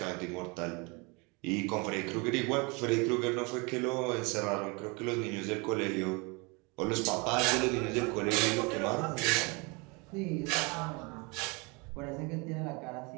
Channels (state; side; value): quieter; left; 29.1 dB